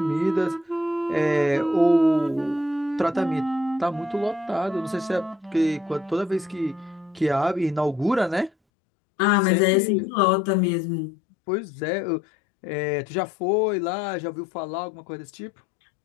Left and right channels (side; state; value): right; drops out; at 8.5 s